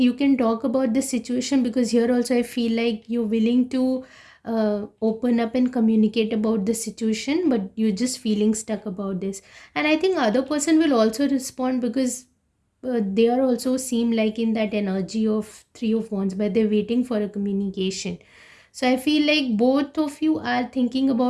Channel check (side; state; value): both; identical; correlation 1.00